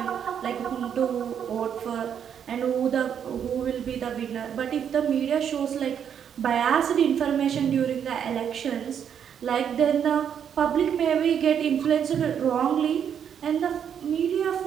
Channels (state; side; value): quieter; left; 8.3 dB